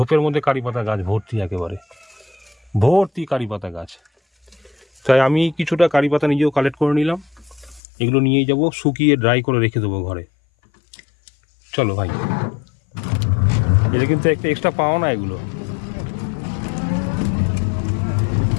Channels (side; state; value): right; drops out; at 7.8 s